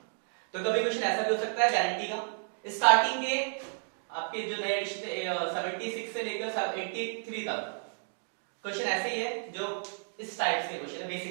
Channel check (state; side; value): silent; left; 57 dB below the other